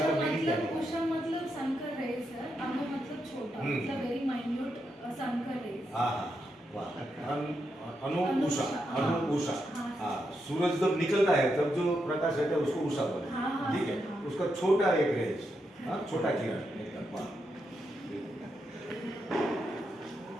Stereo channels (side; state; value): both; normal; correlation 0.83